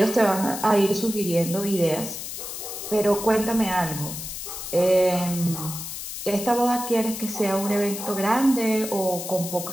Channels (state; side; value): noise; left; hiss, 8 dB below the sound